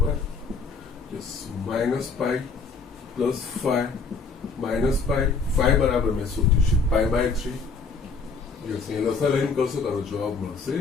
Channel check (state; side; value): quieter; right; 4.6 dB